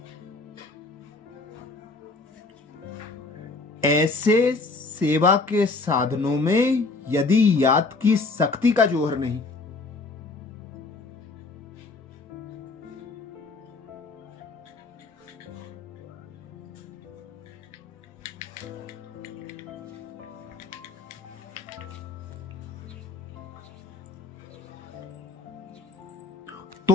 ऐसे सेवा के साधनों में यदि याद की शक्ति का जोहर नहीं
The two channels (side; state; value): right; quieter; 3.7 dB